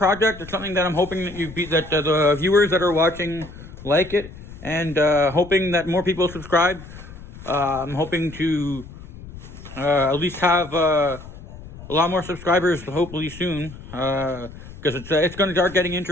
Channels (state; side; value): noise; left; rumble, 15 dB below the sound